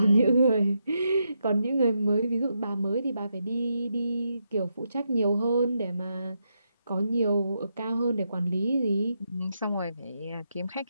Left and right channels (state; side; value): inverted; both; correlation -0.83